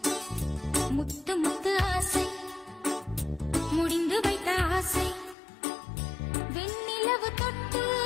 முத்து முத்து ஆசை முடிந்து வைத்த ஆசை வெண்ணிலவு தொட்டு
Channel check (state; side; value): drops out; right; at 5.4 s